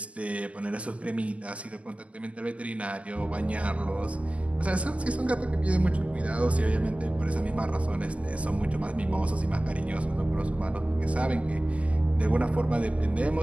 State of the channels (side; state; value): left; late; 0.064 ms